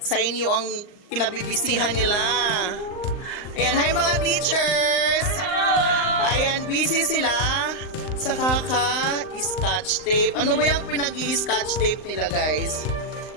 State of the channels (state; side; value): late; right; 39 ms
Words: inyo ang kinabibisihan nila. Ayan, hi mga teachers! Ayan, busy sila sa kaka-scotch tape. Ano ba yung pinag-i-scotch tape nila, guys?